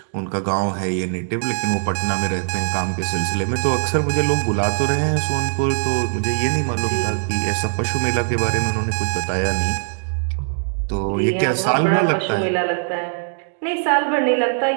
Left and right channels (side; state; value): left; silent; 65 dB below the other